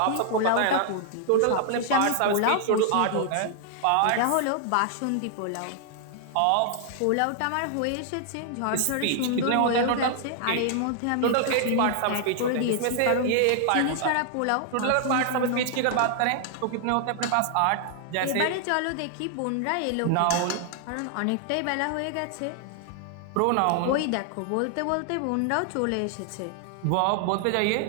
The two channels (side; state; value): both; different; correlation 0.00